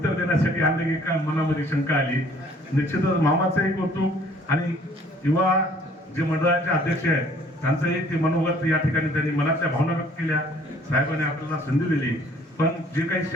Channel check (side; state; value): both; normal; correlation 0.57